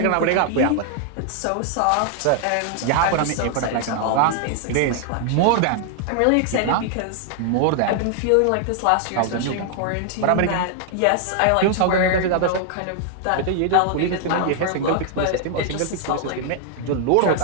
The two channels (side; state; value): both; different; correlation 0.00